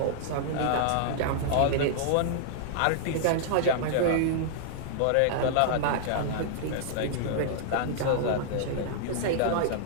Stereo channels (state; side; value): different; both; correlation -0.01